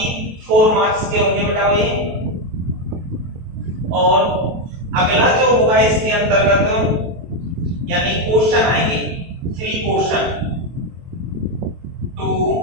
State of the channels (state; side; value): late; left; 23 ms